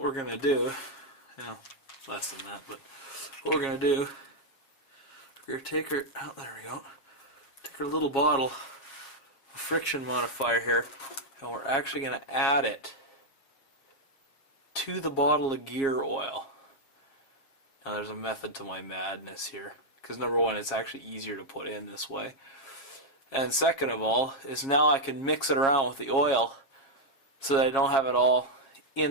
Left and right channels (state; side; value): late; right; 7.4 ms